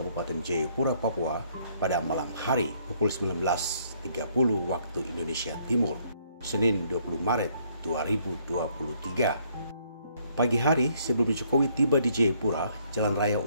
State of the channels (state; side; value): inverted; both; correlation -0.67